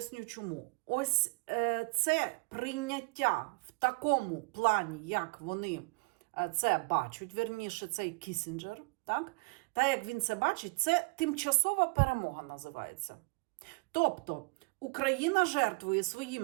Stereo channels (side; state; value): left; quieter; 30.1 dB